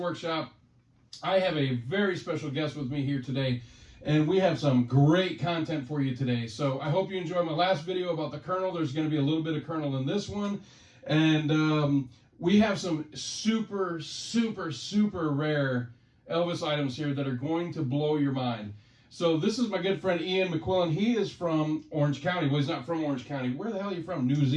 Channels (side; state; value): both; identical; correlation 1.00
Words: I have a very special guest with me here today, and we have some great content for you today. So, I hope you enjoyed my last video about the Colonel. There's going to be a little bit of Colonel in this one. And we have some super, super, super rare Elvis items here that are going to blow your mind. So this is my good friend Ian McQuillan. He is from Orange County. Well, he's not from Orange County. Where the hell are you from? New